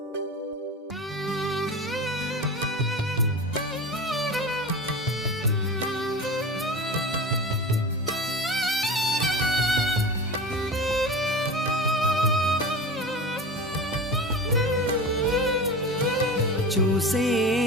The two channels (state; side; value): normal; both; correlation 0.31